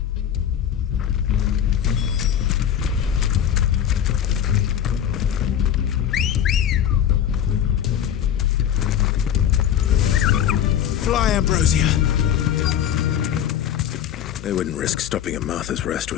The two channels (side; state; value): right; quieter; 9.7 dB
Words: Fly, Ambrosia! They wouldn't risk stopping at Martha's Rest,